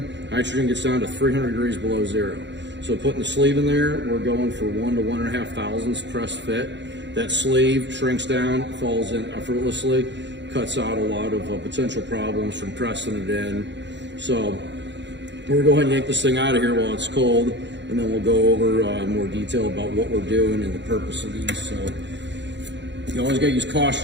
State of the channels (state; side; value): late; left; 0.52 ms